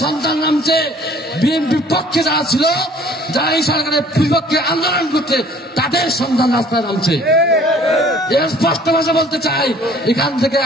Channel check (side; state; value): both; normal; correlation 0.54